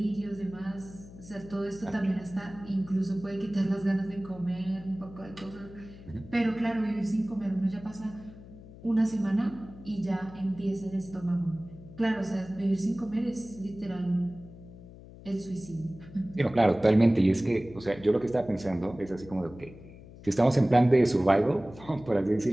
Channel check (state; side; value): noise; left; hum, 18 dB below the sound